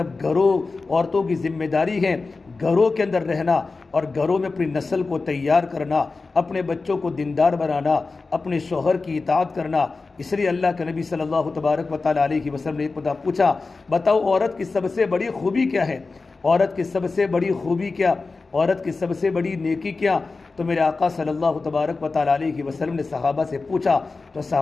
عورتوں کی ذمہ داری ہے گھروں کے اندر رہنا اور گھروں میں اپنی نسل کو تیار کرنا، اپنے بچوں کو دیندار بنانا، اپنے شوہر کی اطاعت کرنا۔ اس لیے اللہ کے نبی صلی اللہ تبارک و تعالیٰ علیہ وسلم نے ایک پوچھا، بتاؤ عورت کی سب سے بڑی خوبی کیا ہے؟ عورت کی سب سے بڑی خوبی کیا؟ عورت کی سب سے بڑی نیکی کیا؟ تو میرے آقا صلی اللہ تبارک و تعالیٰ علیہ وسلم نے صحابہ سے پوچھا، تو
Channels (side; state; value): right; quieter; 3.9 dB